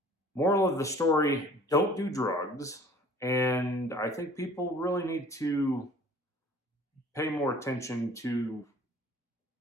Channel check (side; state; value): both; normal; correlation 0.50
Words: moral of the story, don't do drugs. And I think people really need to pay more attention to